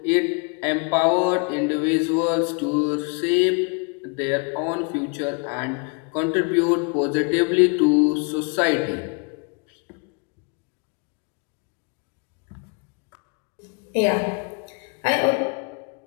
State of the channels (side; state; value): right; quieter; 35.8 dB